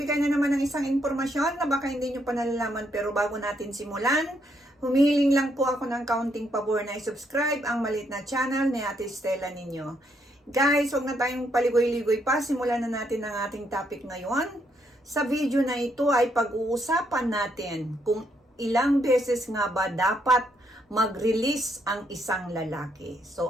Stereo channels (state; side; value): normal; both; correlation 0.75